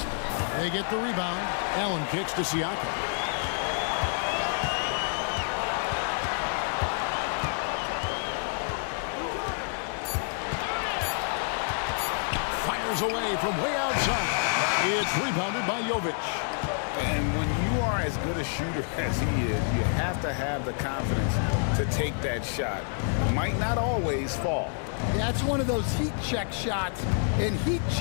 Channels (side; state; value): right; silent; 59 dB below the other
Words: They get the rebound. Allen kicks to Siakam. Away from way outside. It's rebounded by Jovic. And when you are as good a shooter as he is, you have to have the confidence to take that shot. Might not always fall. Yeah, it's one of those heat check shots, and heat